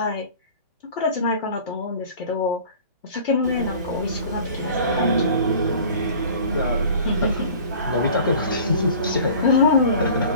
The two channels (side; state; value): both; inverted; correlation -0.45